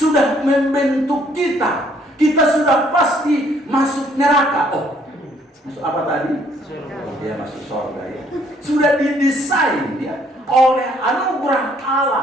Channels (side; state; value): both; normal; correlation 0.65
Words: membentuk kita. Kita sudah pasti masuk neraka. Oh, masuk apa tadi? Ya, masuk surga ya. Sudah didesain ya oleh anugerah